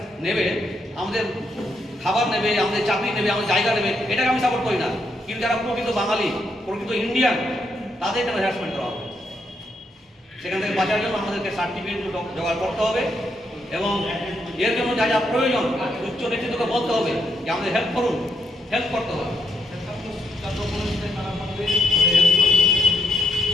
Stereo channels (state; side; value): normal; both; correlation 0.78